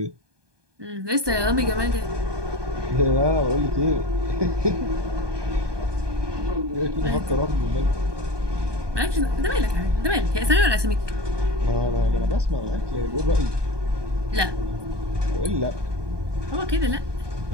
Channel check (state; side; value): late; left; 1.2 ms